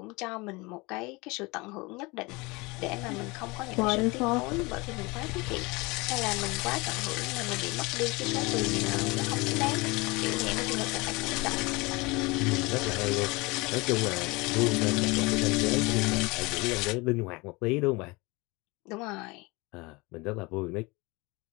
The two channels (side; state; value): right; quieter; 25.0 dB